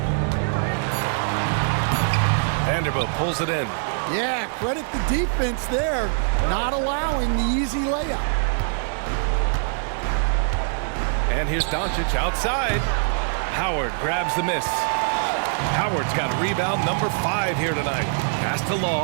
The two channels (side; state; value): left; silent; 63 dB below the other